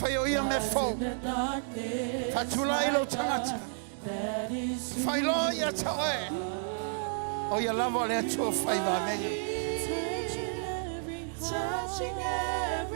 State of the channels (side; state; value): left; silent; digital silence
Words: Whaia ia me fo. Fatula ilo tangata. Whailo ia taoe. O ia lava le atua whaiva menga. Touching